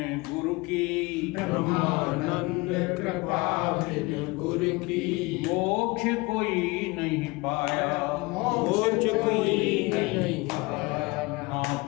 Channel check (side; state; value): right; quieter; 24.4 dB